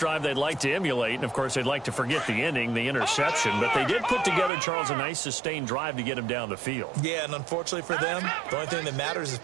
they'd like to emulate. And, of course, they'd like to forget the ending, the interception. But they did put together, Charles, a nice sustained drive to get him down the field. Yeah, and unfortunately for them, the only thing that matters is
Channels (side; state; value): left; drops out; at 4.5 s